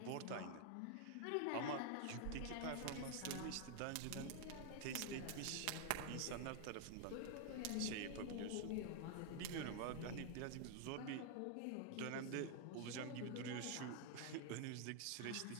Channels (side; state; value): both; different; correlation 0.00